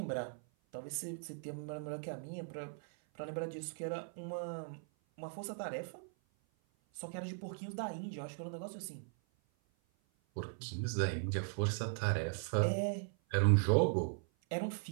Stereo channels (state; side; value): silent; left; 52 dB below the other